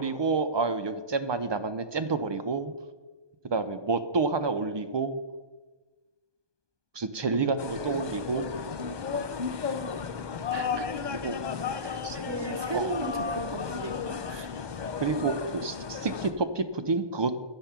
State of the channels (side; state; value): left; late; 1.2 ms